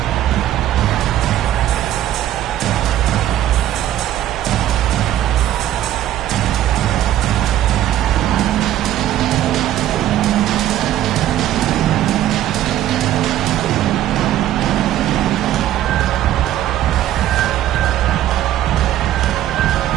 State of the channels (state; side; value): quieter; left; 12.6 dB